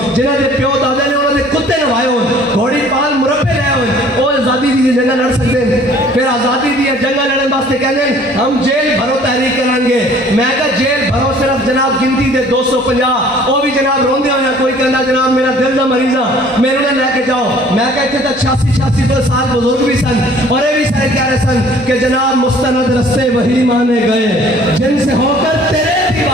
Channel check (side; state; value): both; normal; correlation 0.54